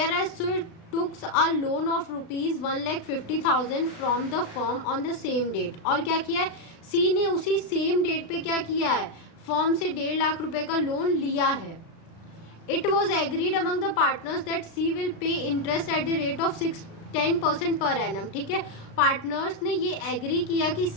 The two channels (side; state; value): right; late; 36 ms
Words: whereas took a loan of ₹1,50,000 from the firm on the same date। और क्या किया है, सी ने उसी सेम डेट पे क्या किया है, फर्म से 1.5 लाख रुपए का लोन लिया है। It was agreed among the partners that C will pay interest at the rate of 10% per annum. ठीक है, पार्टनर्स ने ये एग्री किया कि